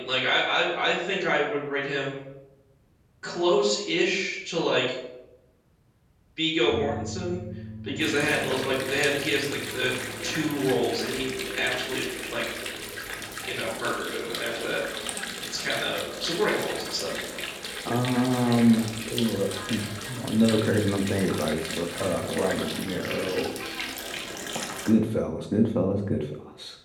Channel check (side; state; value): both; identical; correlation 1.00